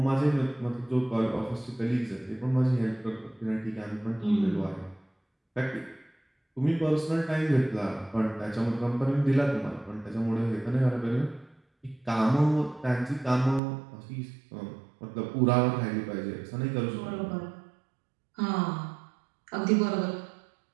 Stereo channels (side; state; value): left; drops out; at 13.6 s